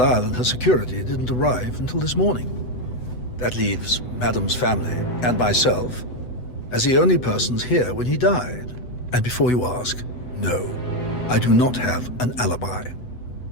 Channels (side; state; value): right; late; 8.0 ms